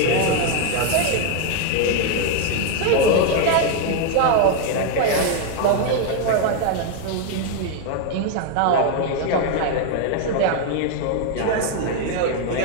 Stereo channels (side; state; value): both; different; correlation 0.01